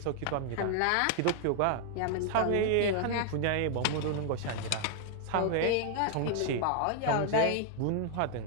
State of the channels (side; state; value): both; different; correlation 0.00